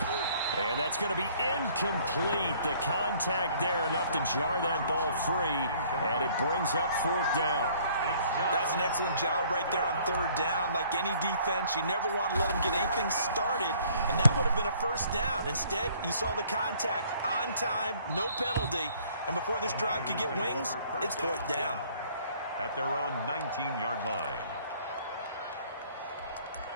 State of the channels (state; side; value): inverted; both; correlation -0.59